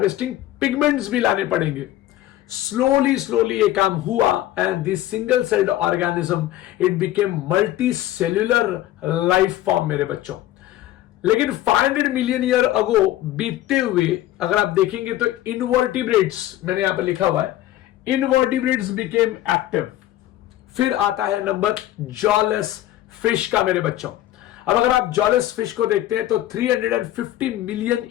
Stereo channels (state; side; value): quieter; right; 14.2 dB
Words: pigments भी लाने पड़ेंगे। स्लोली ये काम हुआ and this single celled organism it became multi cellular life form मेरे बच्चों। लेकिन 500 मिलियन ईयर अगो बीतते हुए अगर आप देखेंगे तो इनवर्टिब्रेट्स, मैंने यहां पर लिखा हुआ है, इनवर्टिब्रेट्स बिकेम एक्टिव। फिर आता है नंबर जॉलेस फिश का मेरे बच्चों। अब अगर आप जॉलेस फिश को देखते हैं तो 350 मिलियन